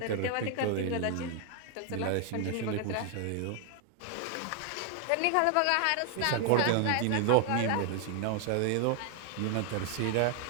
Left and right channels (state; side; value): different; both; correlation 0.01